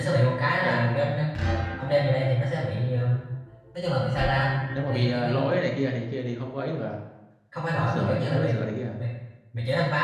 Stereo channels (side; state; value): both; identical; correlation 1.00